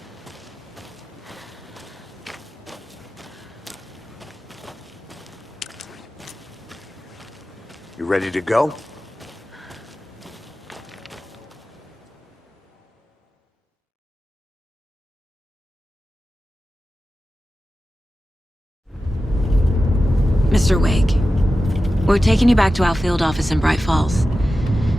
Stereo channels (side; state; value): both; normal; correlation 0.93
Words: ready to go? Mr. Wake, we're taking you back to our field office in Bright Falls.